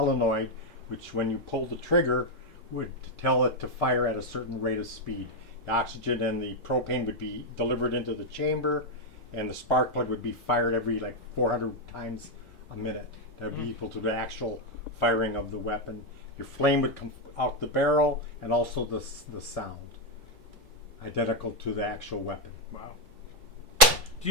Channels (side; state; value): both; normal; correlation 0.02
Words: which when you pull the trigger would tell it to fire at a certain rate of speed. The oxygen and the propane would be delivered into the chamber, and the spark plug would be fired every like 400 times a minute. That would be equal to the actual firing of the weapon. Your flame would come out the barrel, and also the sound, identical to the actual weapon. Wow. Do